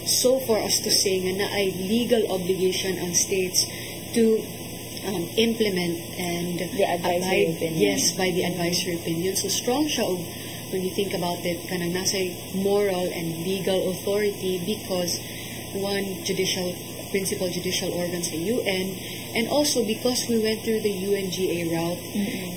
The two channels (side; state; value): both; identical; correlation 1.00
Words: so far as to say nga na ay legal obligation ang states to implement and The advisory opinion. yes, by the advisory opinion. So strong siya og when you think about it, kanang nasa moral and legal authority because one principal judicial organ sa UN, and also because we went through the UNGA route,